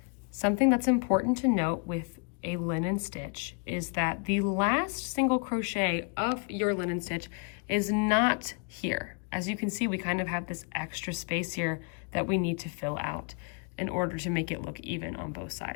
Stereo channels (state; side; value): quieter; right; 37.9 dB